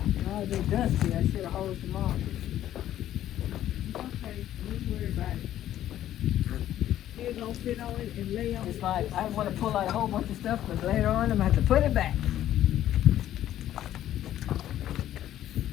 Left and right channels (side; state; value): right; quieter; 12.3 dB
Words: No, they dusty. I should have hosed them off. Okay, don't worry about it. They're gonna sit on it and lay on it. It's like I want to pull out a whole bunch of stuff, but later on I'm gonna have to put it back.